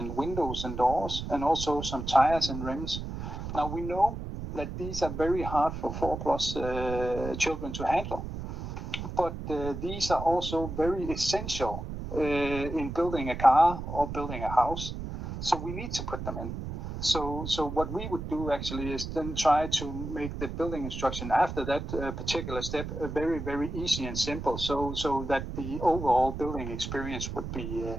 windows and doors, and also some tires and rims. Now we know that these are very hard for 4+ children to handle, but these are also very essential in building a car or building a house. So we need to put them in. So what we would do actually is then try to make the building instruction after that particular step very, very easy and simple, so that the overall building experience would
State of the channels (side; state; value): right; noise; rumble, 7 dB below the sound